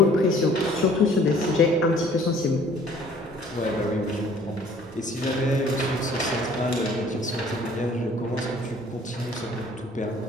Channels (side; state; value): both; normal; correlation 0.54